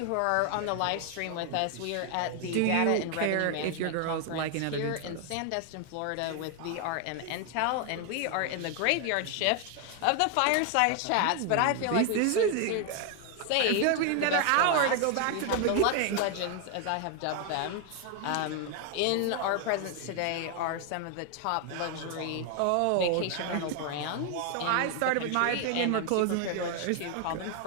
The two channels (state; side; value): different; both; correlation 0.01